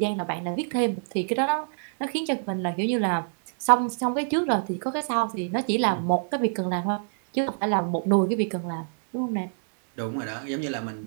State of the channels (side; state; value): left; silent; digital silence